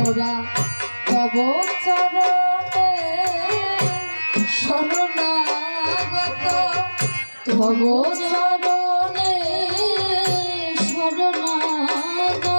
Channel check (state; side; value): inverted; both; correlation -1.00